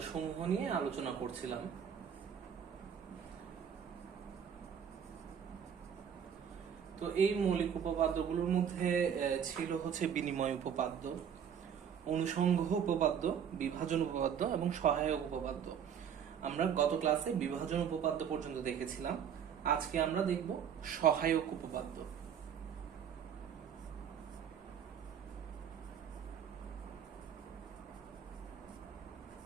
সমূহ নিয়ে আলোচনা করছিলাম। তো এই মৌলিক উপপাদ্যগুলোর মধ্যে ছিল হচ্ছে বিনিময় উপপাদ্য, অনুসংঘ উপপাদ্য, বিভাজন উপপাদ্য এবং সহায়ক উপপাদ্য। আমরা গত ক্লাসে বিভাজন উপপাদ্য পর্যন্ত দেখেছিলাম। আজকে আমরা দেখব সহায়ক উপপাদ্য।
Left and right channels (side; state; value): left; quieter; 8.2 dB